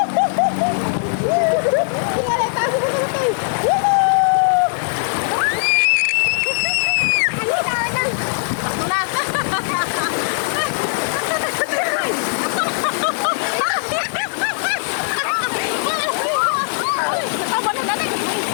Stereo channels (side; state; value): right; silent; digital silence